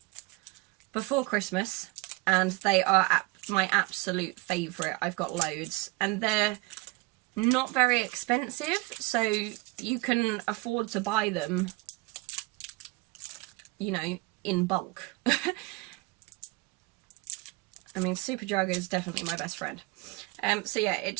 before Christmas, and they are my absolute favourite. I've got loads, and they're not very expensive, so you can afford to buy them, you know, in bulk. I mean, Superdrug is definitely my best friend. So yeah, it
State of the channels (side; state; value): left; quieter; 23.9 dB